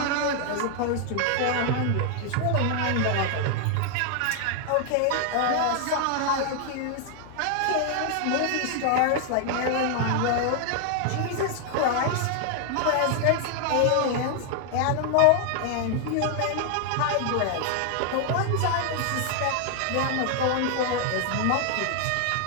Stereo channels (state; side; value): different; both; correlation 0.00